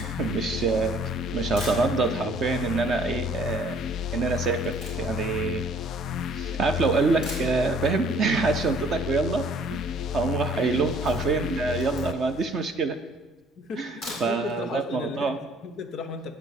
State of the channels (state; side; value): normal; both; correlation 0.57